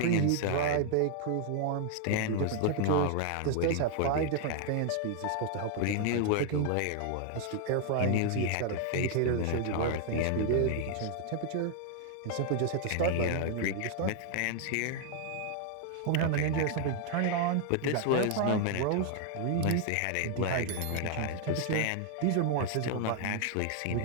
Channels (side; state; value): both; different; correlation 0.00